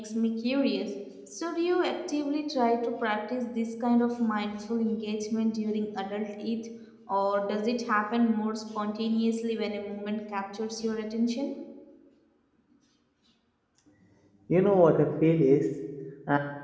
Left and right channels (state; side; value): identical; both; correlation 1.00